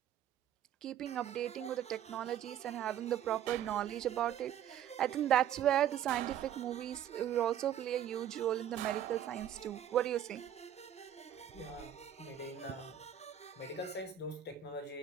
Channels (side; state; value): left; quieter; 10.3 dB